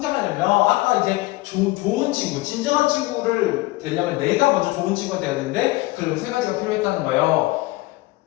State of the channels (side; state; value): right; quieter; 20.2 dB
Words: 아까 이제 좋은 친구, 진정한 친구를 되려면 내가 먼저 좋은 친구가 돼야 되는데 그럼 세 가지가 필요했다는 거예요.